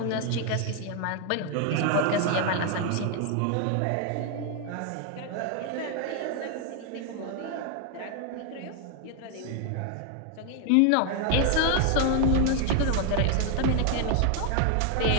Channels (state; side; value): different; both; correlation 0.00